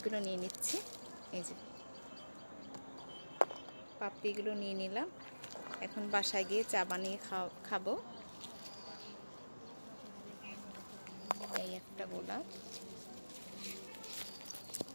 নিয়ে নিচ্ছি। এই যে পাপড়িগুলো নিয়ে নিলাম। এখন বাসায় গিয়ে চা বানিয়ে খাবো। এই একটা গোলাপ,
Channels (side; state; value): both; inverted; correlation -1.00